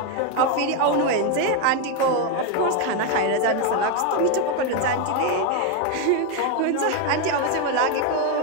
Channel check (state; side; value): different; both; correlation 0.01